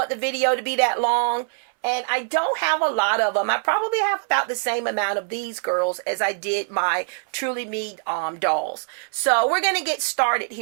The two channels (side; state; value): left; silent; 63 dB below the other